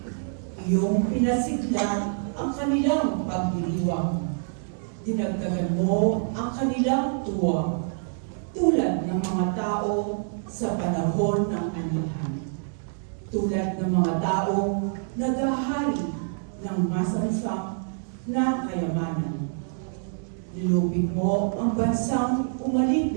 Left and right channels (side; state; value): left; silent; digital silence